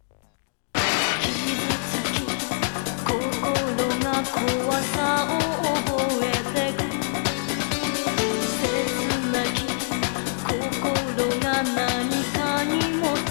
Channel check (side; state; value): right; silent; digital silence